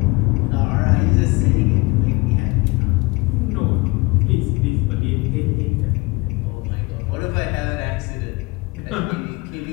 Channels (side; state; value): right; quieter; 24.2 dB